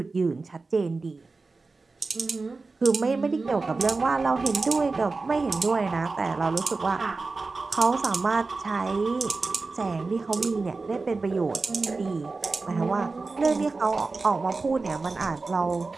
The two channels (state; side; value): quieter; left; 3.8 dB